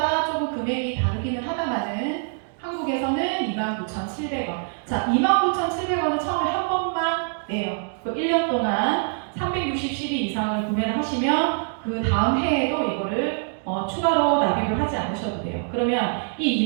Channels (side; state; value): left; silent; 62 dB below the other